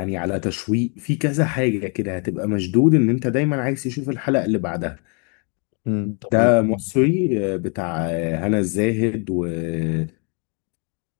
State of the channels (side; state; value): right; quieter; 36.6 dB